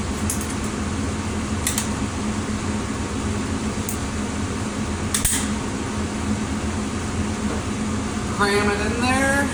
cram it in there.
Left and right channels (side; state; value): both; identical; correlation 1.00